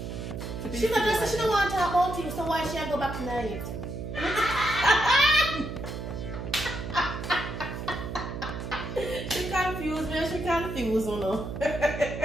to be. She single. She don't want to talk about you, so why she go back tonight? She confused me. She confused me.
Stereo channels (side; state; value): right; noise; hum, 7 dB below the sound